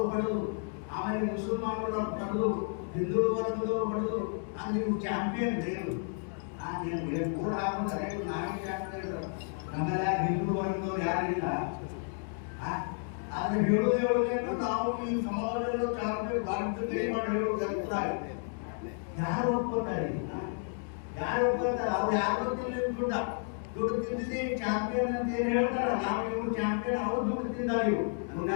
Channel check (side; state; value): right; silent; 55 dB below the other